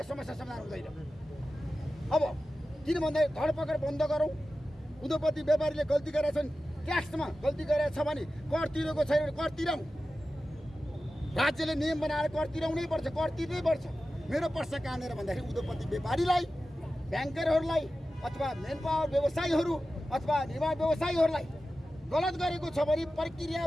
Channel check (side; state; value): both; normal; correlation 0.94